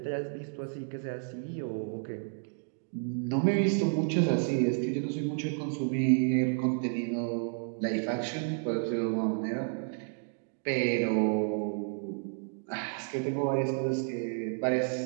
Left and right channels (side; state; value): left; silent; 57 dB below the other